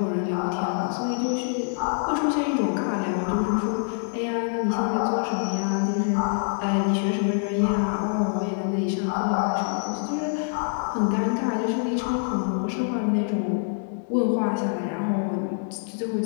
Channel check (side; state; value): right; silent; 61 dB below the other